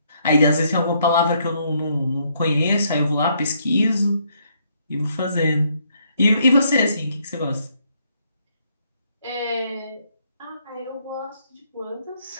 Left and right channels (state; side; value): inverted; both; correlation -0.71